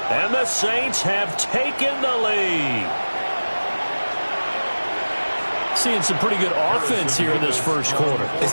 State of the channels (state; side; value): inverted; both; correlation -1.00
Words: And the Saints have taken the lead. Seeing some pretty good offense here in this first quarter.